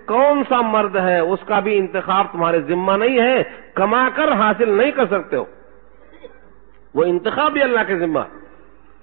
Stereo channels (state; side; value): silent; left; 68 dB below the other